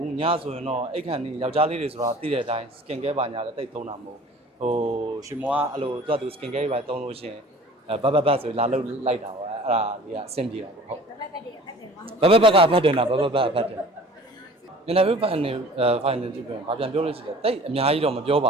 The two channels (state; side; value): normal; both; correlation 0.46